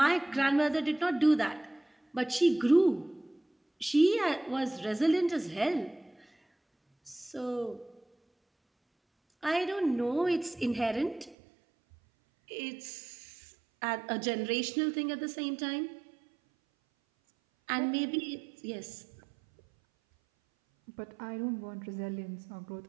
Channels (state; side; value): drops out; left; at 11.4 s